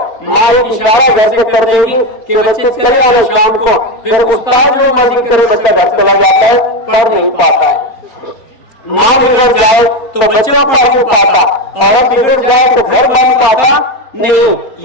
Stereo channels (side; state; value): right; late; 4.3 ms